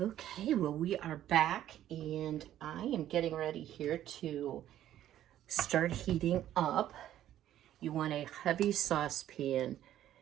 Okay, well, we are back, and I am getting ready here to start heating up. You want a heavy saucepan,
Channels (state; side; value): quieter; left; 12.2 dB